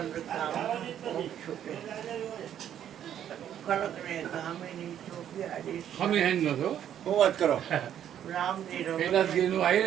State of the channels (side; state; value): left; quieter; 10.1 dB